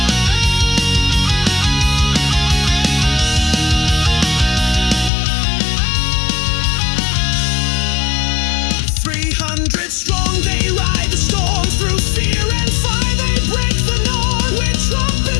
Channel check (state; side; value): drops out; right; at 5.1 s